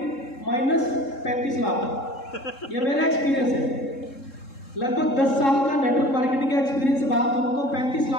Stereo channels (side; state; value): right; late; 3.7 ms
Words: minus 35 lakh. ये मेरा एक्सपीरियंस है, लगभग 10 साल का नेटवर्क मार्केटिंग का एक्सपीरियंस से बात करूँ तो 35